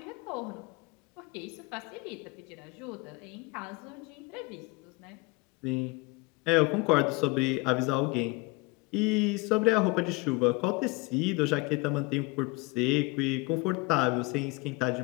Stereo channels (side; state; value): right; quieter; 26.1 dB